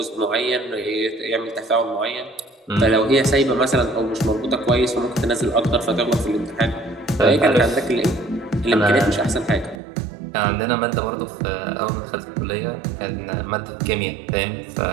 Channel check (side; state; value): left; drops out; at 9.8 s